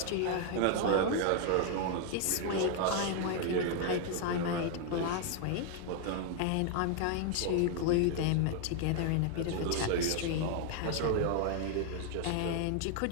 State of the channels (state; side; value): different; both; correlation 0.00